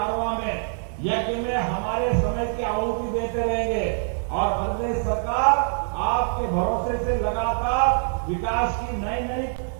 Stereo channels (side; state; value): left; silent; digital silence